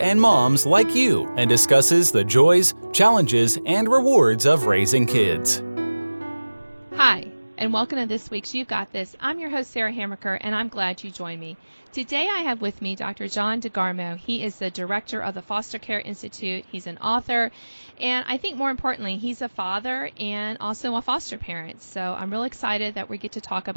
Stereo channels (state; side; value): inverted; both; correlation -1.00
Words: moms like you and discusses the joys, challenges, and rewards of raising kids. Hi, and welcome to this week's You've Got This. I'm your host, Sarah Hamaker, and I'm glad you joined me. Today I have with me Dr. John DeGarmo. He is the director of the Foster Care Institute. He's an author, and I think more importantly, he's a father and also a foster parent. So I'm really excited that we get to talk